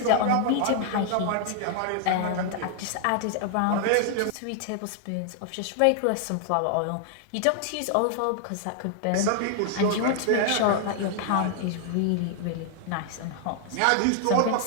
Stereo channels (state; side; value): different; both; correlation 0.00